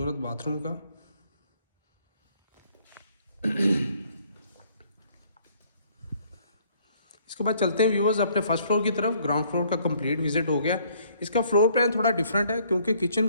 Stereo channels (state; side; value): inverted; both; correlation -0.63